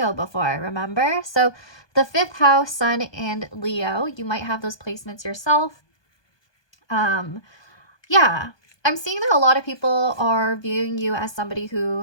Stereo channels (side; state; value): right; late; 1.2 ms